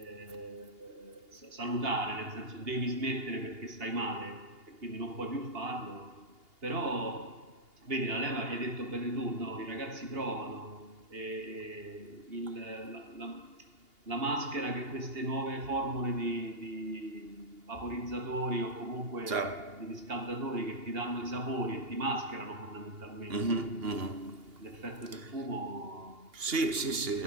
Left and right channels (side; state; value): left; late; 2.8 ms